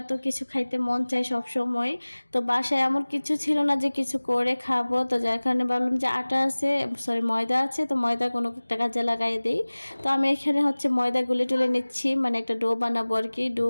তো কিছু খাইতে মন চায় সব সময়। তো বাসায় এমন কিছু ছিল না যে কিছু করে খাবো, তো যার কারণে ভাবলাম যে আটা আছে, সরি ময়দা আছে, তো ময়দা কোনো একটা কাজে লাগাই দিই। তো আমি এখানে হচ্ছে ময়দা গুলে টুলে নিচ্ছি, মানে একটা ডো বানাবো আর কি। ডো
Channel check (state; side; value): inverted; both; correlation -1.00